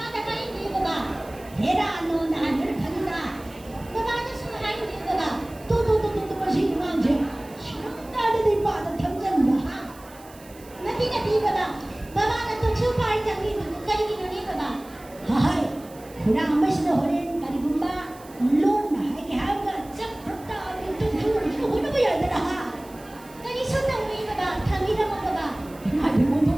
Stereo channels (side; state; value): right; noise; hiss, 23 dB below the sound